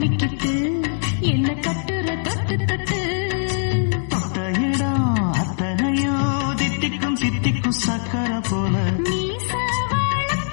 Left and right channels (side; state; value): right; silent; digital silence